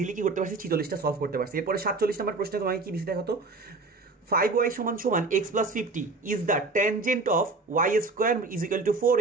কি করতে পারছি, 46টা সলভ করতে পারছি। এরপরে 47 নাম্বার প্রশ্নে তোমাকে কি দিছে দেখো তো, 5y = x + 50 is the tangent of y² is equal to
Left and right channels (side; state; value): left; quieter; 3.6 dB